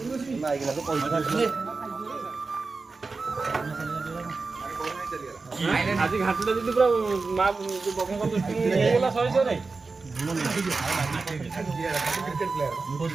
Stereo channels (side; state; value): left; quieter; 4.1 dB